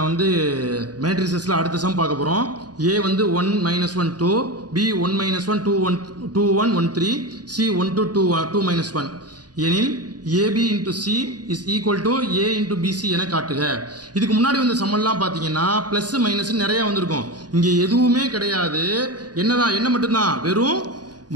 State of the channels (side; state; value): left; late; 0.69 ms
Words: வந்து மேட்ரிசஸில் அடுத்த சம் பார்க்க போகிறோம். ஏ வந்து 1 -1 2, பி 1 -1 2 1 2 1 1 3, சி 1 to 2 2 -1 எனில் A B into C is equal to A into B C என காட்டுக. இதுக்கு முன்னாடி வந்த சம்மெல்லாம் பார்த்தீங்கன்னா ப்ளஸ் மைனஸ் நிறையா வந்திருக்கும். இங்கே எதுவுமே கிடையாது. என்ன மட்டும்தான், வெறும்